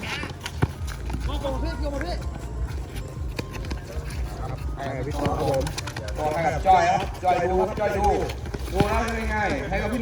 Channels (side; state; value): both; identical; correlation 1.00